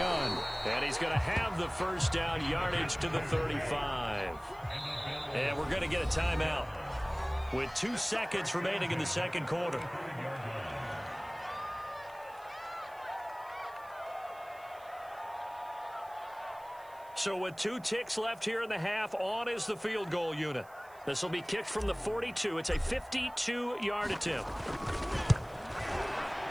And he's going to have the first down, yardage to the 35. And we're going to get a timeout with 2 seconds remaining in the second quarter. So with 2 ticks left here in the half, on is the field goal unit. This will be kicked from the 42. It's a 52-yard attempt.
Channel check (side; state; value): right; noise; hiss, 26 dB below the sound